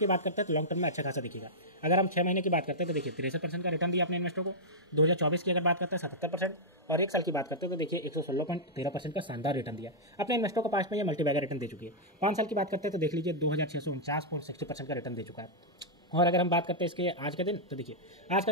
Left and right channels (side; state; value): both; normal; correlation -0.10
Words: बात करते हैं तो लॉन्ग टर्म में अच्छा खासा दिखेगा। अगर हम 6 महीने की बात करते हैं तो देखिए 63% का रिटर्न दिया अपने इन्वेस्टर को। 2024 की अगर बात करते हैं 77%, और एक साल की बात करते हैं तो देखिए 116.13% का शानदार रिटर्न दिया अपने इन्वेस्टर को। पास में ये मल्टीबैगर रिटर्न दे चुकी है। 5 साल की बात करते हैं तो देख लीजिए 2649.60% का रिटर्न दे चुका है। और अगर हम बात करते हैं इसके आज का दिन, तो देखिए आज का